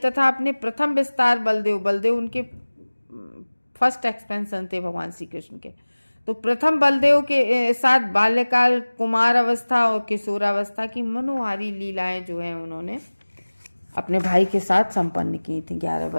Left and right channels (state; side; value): inverted; both; correlation -1.00